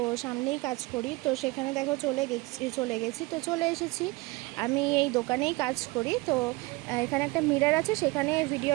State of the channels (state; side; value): quieter; left; 23.3 dB